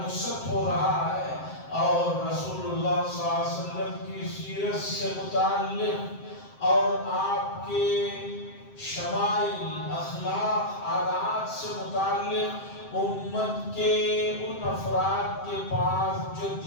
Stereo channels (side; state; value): right; late; 7.6 ms